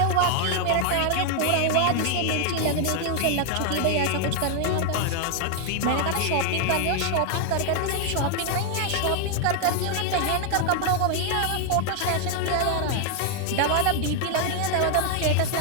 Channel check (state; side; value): different; both; correlation 0.00